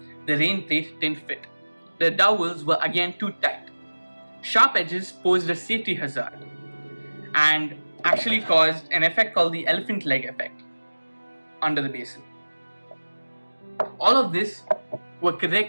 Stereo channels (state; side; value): inverted; both; correlation -1.00